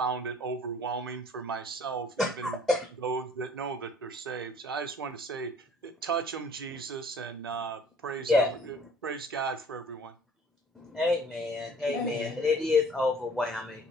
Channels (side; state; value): both; normal; correlation 0.53